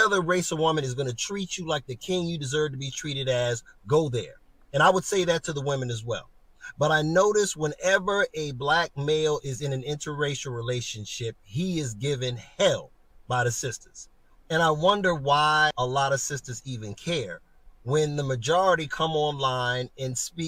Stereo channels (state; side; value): identical; both; correlation 1.00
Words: race of woman is going to treat you like the king you deserve to be treated as, go there. And I would say that to the women as well. But I notice whenever a black male is in an interracial relationship, he is given hell by the sisters. And I wonder why a lot of sisters even care when the majority come online and